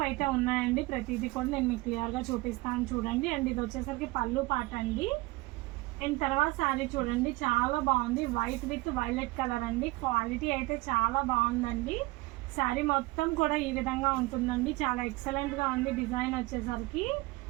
అయితే ఉన్నాయండి. ప్రతిదీ కూడా నేను మీకు క్లియర్గా చూపిస్తాను చూడండి. అండ్ ఇది వచ్చేసరికి పళ్ళు పాట అండి. అండ్ తర్వాత శారీ చూడండి, చాలా బాగుంది. వైట్ విత్ వైలెట్ కలర్ అండి. క్వాలిటీ అయితే చాలా బాగుందండి. శారీ మొత్తం కూడా ఈ విధంగా ఉంటుందండి. చాలా ఎక్సలెంట్గా ఉంది డిజైన్ వచ్చేసరికి.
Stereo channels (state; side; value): quieter; left; 21.8 dB